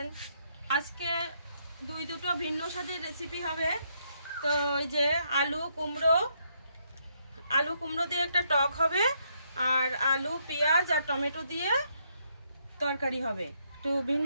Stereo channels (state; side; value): inverted; both; correlation -0.75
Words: আজকে দুটো ভিন্ন স্বাদের রেসিপি হবে। তো এই যে আলু কুমড়ো দিয়ে একটা টক হবে, আর আলু পেঁয়াজ আর টমেটো দিয়ে তরকারি হবে। একটু